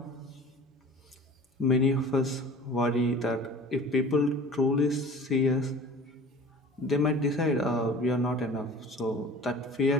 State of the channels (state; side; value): normal; both; correlation 0.43